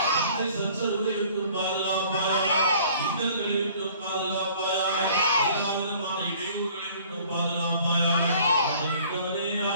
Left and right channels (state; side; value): inverted; both; correlation -0.53